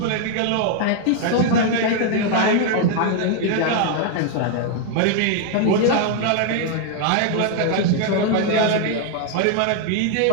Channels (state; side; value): different; both; correlation 0.00